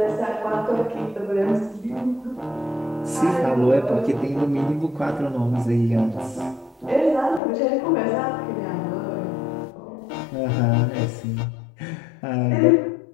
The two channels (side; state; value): right; drops out; at 7.4 s